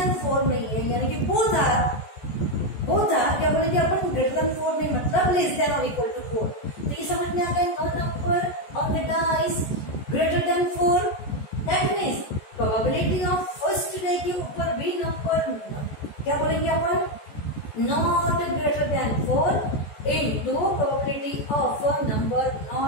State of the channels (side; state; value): right; late; 14 ms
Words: 4 नहीं है, यानी कि बोथ आर क्या बोलेंगे अपन, ग्रेटर देन 4 नहीं मतलब लेस देन और इक्वल टू 4। तो ये समझ में आ गया, no number on the dice greater than 4, that means probability of first day के ऊपर भी नंबर क्या बोलेंगे अपन, not greater than 4 into probability of a number not